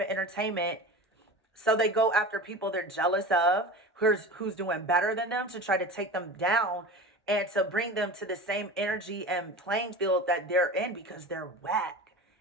entertainment. So they go after people they're jealous of, who's doing better than them, to try to take them down and to bring them to the same energy and playing field that they're in, because they're whack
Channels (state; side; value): normal; both; correlation 0.32